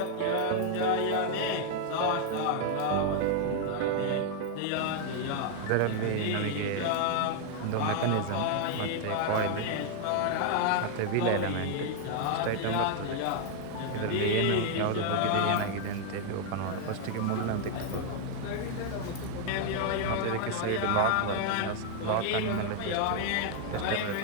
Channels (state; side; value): different; both; correlation 0.00